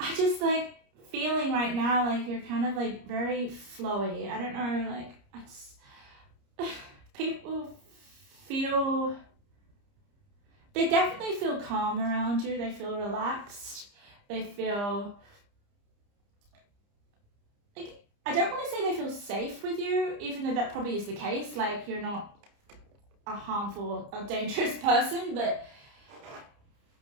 just like feeling right now like you're kind of like very flowy. I don't know, like people feel, they definitely feel calm around you. They feel relaxed. They feel like, I don't want to say they feel safe with you, even though that probably is the case. Like, you're not a harmful or dangerous person, but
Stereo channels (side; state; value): left; late; 30 ms